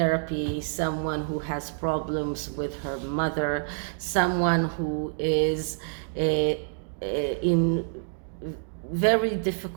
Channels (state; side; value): silent; left; digital silence